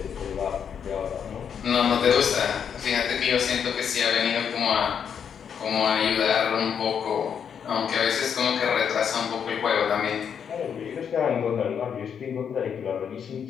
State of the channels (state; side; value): quieter; right; 7.6 dB